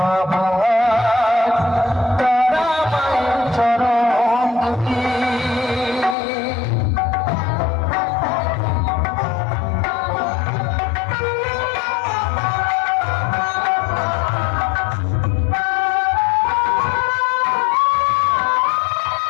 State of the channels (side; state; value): right; drops out; at 6.2 s